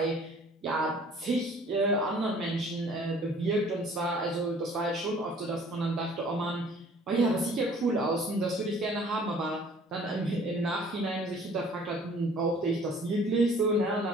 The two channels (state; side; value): normal; both; correlation 0.53